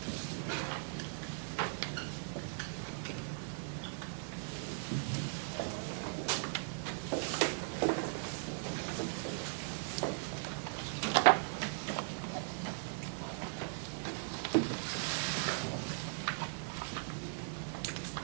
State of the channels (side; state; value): left; silent; digital silence